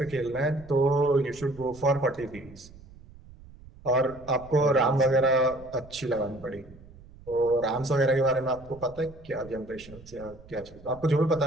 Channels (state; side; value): noise; right; rumble, 20 dB below the sound